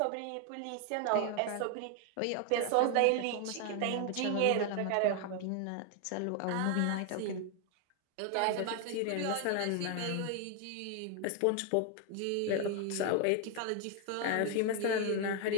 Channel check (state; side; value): different; both; correlation 0.01